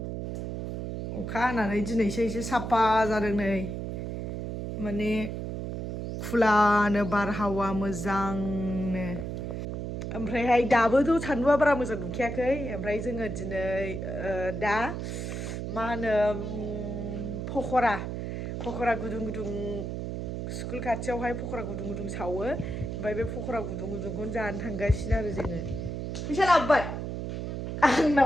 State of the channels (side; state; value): right; noise; hum, 4 dB below the sound